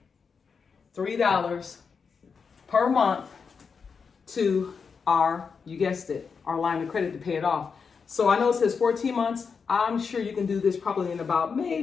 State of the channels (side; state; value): right; quieter; 5.7 dB